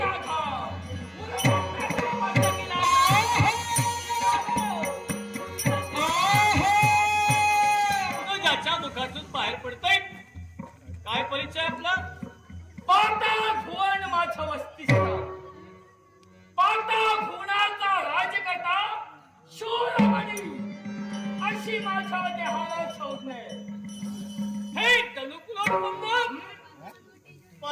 तुझ्याच्या मुखातून बाहेर पडतोय. काय परिचय आपला? पाता भुवन माझ्या वस्तीस्थान. पाता भुवनाचा राजकर्ता शूरमणी अशी माझ्या देहाला शोधणे. हे तनुकुलोत्पन्न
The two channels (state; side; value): identical; both; correlation 1.00